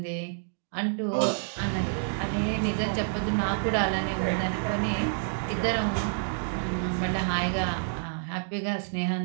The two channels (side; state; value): left; silent; digital silence